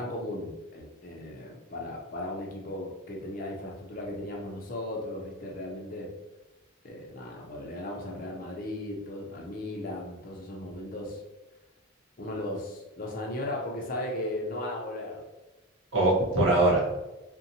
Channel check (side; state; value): both; normal; correlation 0.21